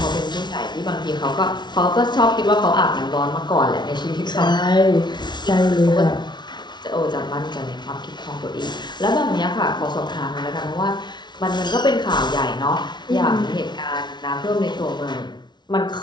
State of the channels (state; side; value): late; right; 0.21 ms